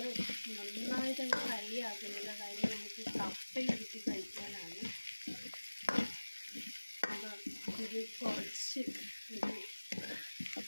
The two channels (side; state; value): both; inverted; correlation -1.00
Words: നന്നായിട്ട് ഫ്രൈ ആക്കുന്നില്ല. കാര്യം നമുക്ക് കപ്പയിട്ട് കഴിക്കാനാണ്. ഇത് കുറച്ച്